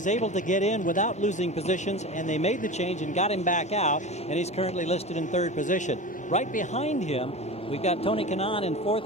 able to get in without losing positions, and they made the change and got him back out, and he's currently listed in 3rd position. Right behind him, we've got Tony Kanaan in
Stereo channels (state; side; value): normal; both; correlation 0.30